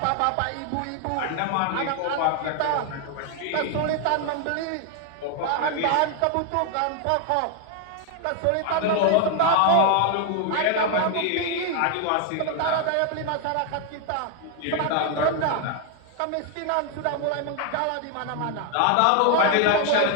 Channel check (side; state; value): both; different; correlation 0.00